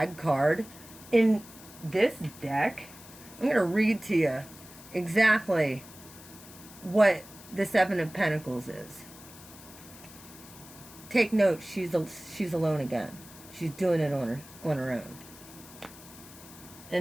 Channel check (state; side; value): noise; left; hiss, 19 dB below the sound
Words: card. In this deck, I'm going to read to you exactly what the Seven of Pentacles is. Take note, she's alone again. She's doing it on her own.